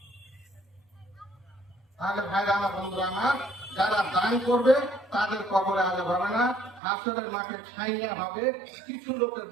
তাহলে ভাইরা আমার, বন্ধুরা আমার, যারা দান করবে তাদের কবরে আযাব হবে না, হাসরের মাঠে ছাইয়া হবে কিছু লোকের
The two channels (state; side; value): drops out; left; at 6.8 s